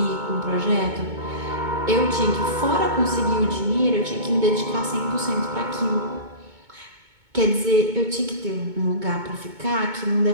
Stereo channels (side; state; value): left; late; 2.2 ms